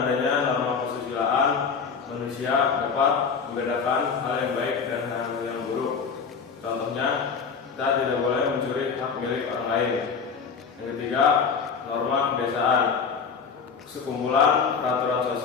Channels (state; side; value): quieter; right; 5.8 dB